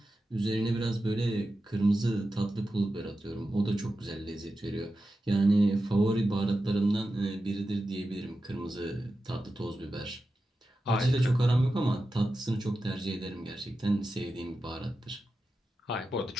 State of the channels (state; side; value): normal; both; correlation 0.92